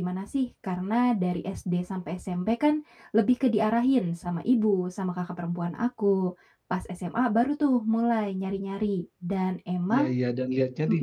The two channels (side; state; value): both; identical; correlation 1.00